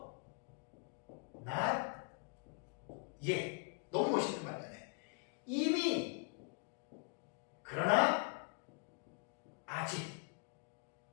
not yet. 너무 멋있는 말이잖아요. 이미 그러나 아직.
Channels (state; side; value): quieter; right; 38.2 dB